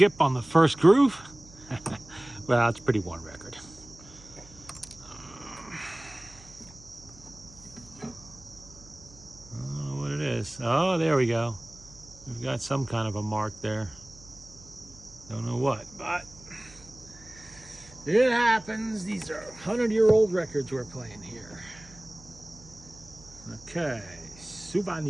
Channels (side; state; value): right; noise; hum, 21 dB below the sound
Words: on the first groove? Well, it's a pretty worn record. I don't know what it is. Oh, there we go. We've got some kind of a mark there. Don't know what, but it happens. These are 100-year-old records we're playing here. Okay,